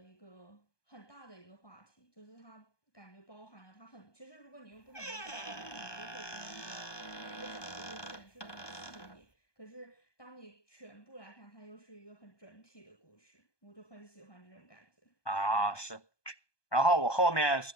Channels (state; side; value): late; right; 1.2 ms